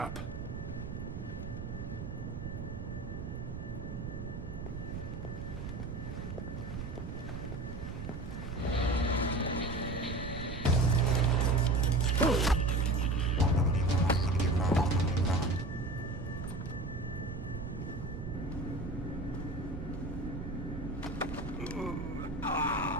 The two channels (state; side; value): noise; right; rumble, 7 dB below the sound